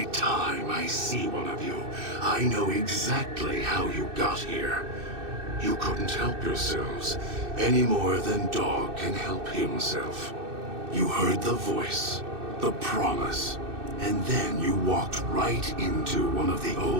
time I see one of you, I know exactly how you got here. You couldn't help yourselves, any more than Dog can help himself. You heard the voice, the promise, and then you walked right into one of the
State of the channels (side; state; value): left; late; 2.6 ms